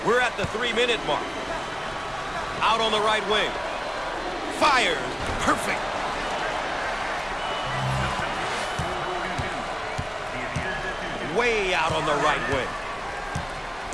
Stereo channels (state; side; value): identical; both; correlation 1.00